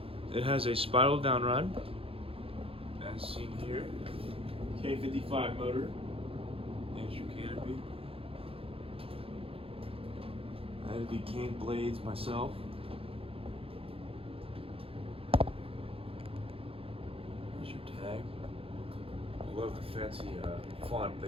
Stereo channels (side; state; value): left; late; 0.27 ms